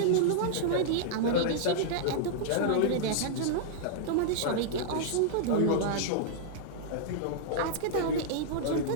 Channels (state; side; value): different; both; correlation -0.02